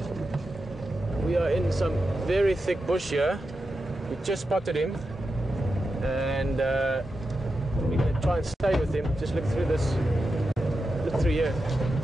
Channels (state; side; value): normal; both; correlation 0.89